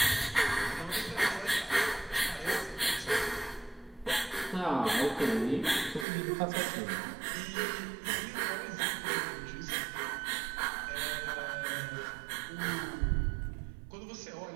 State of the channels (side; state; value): left; drops out; at 6.1 s